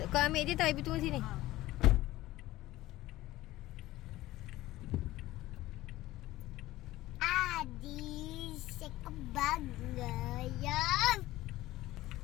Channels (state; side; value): quieter; right; 16.7 dB